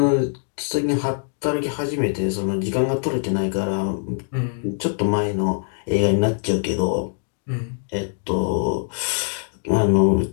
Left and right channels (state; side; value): silent; right; digital silence